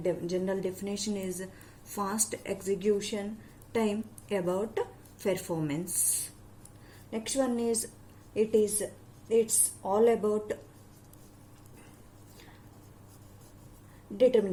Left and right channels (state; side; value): identical; both; correlation 1.00